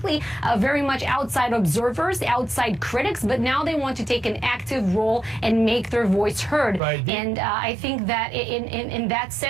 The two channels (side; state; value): left; drops out; at 6.8 s